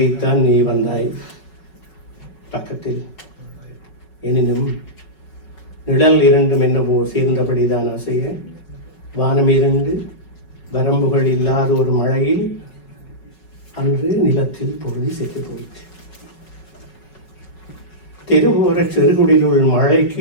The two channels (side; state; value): right; late; 5.4 ms